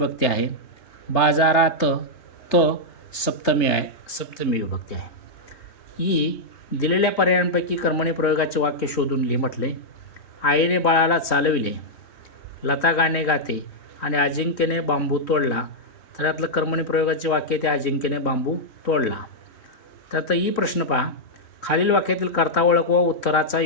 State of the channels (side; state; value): right; late; 3.3 ms